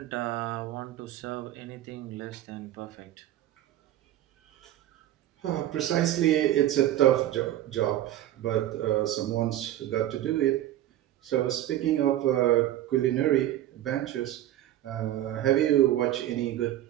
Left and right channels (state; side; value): quieter; left; 13.3 dB